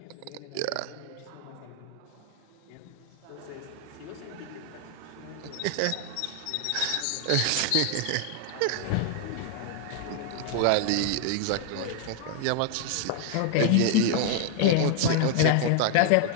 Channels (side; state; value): both; different; correlation 0.00